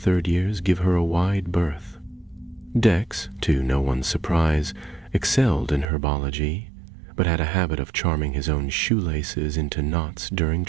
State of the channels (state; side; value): drops out; left; at 5.9 s